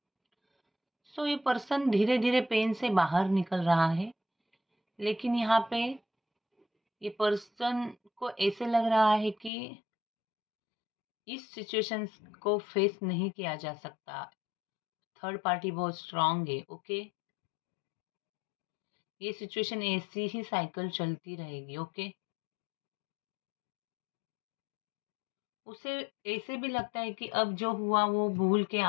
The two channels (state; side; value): drops out; right; at 9.5 s